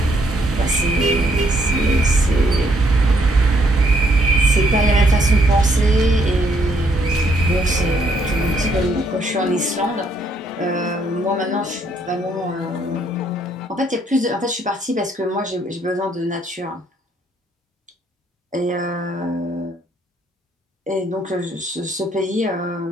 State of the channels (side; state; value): both; normal; correlation 0.70